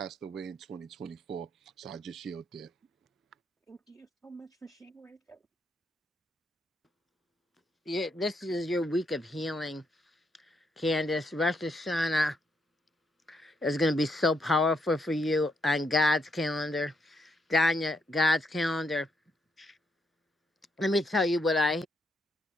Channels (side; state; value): both; normal; correlation 0.77